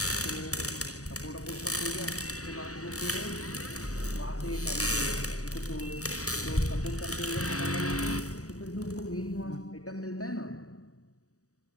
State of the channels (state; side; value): late; right; 0.66 ms